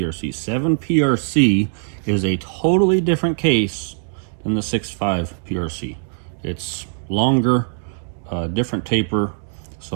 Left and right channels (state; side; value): silent; left; digital silence